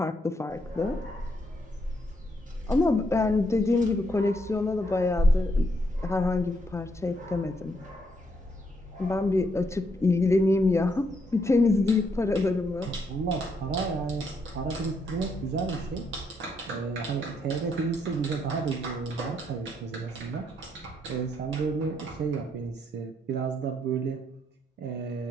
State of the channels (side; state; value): both; normal; correlation 0.75